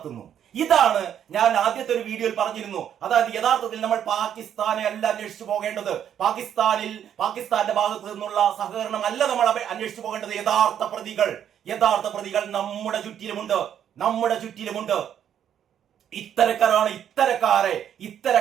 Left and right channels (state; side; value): quieter; left; 9.5 dB